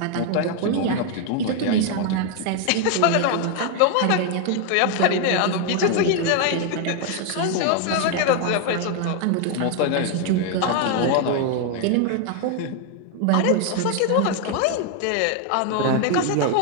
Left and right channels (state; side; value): different; both; correlation 0.01